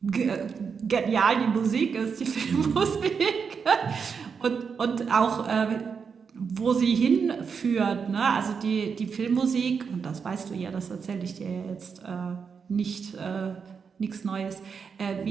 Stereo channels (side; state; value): left; quieter; 6.0 dB